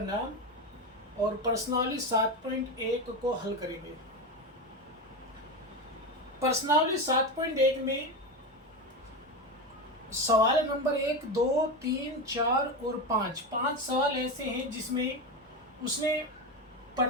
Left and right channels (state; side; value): normal; both; correlation 0.17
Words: नाम और प्रश्नावली 7.1 को हल करेंगे। प्रश्नावली 7.1 में सवाल नंबर 1, 2, 3, 4 और 5 सवाल ऐसे हैं जिसमें उसने